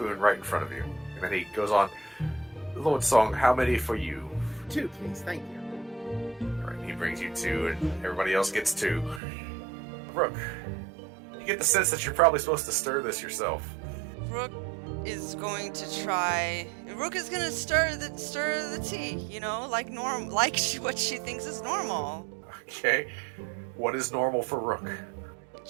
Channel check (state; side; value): drops out; left; at 9.2 s